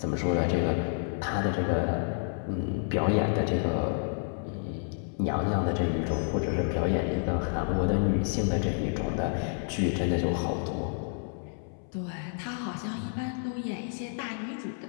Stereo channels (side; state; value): right; silent; 58 dB below the other